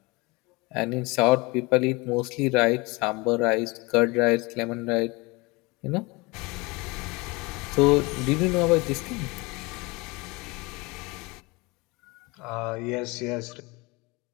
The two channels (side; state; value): right; quieter; 25.0 dB